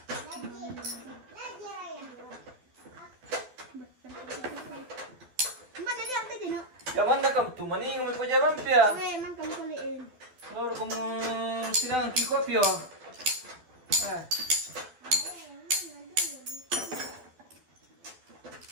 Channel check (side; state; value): left; late; 12 ms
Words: Jangan nak kamu tu mana yang mau jalan pia? Oke, man kamu kuliin. Kalau kamu sidang kiko pia.